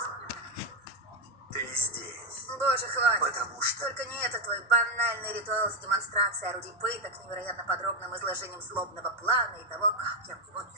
Ты здесь. Боже, хватит. Потому что... Только не это твой банальный ритуал с демонстрацией орудий пыток, невероятно подробным изложением злобного плана и того, как я в него не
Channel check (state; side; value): normal; both; correlation 0.08